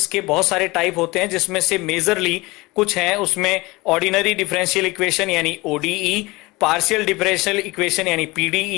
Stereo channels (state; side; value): quieter; right; 22.5 dB